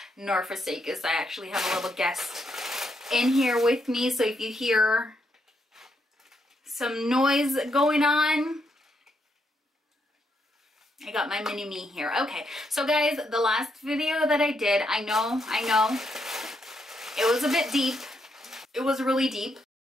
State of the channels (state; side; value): normal; both; correlation 0.78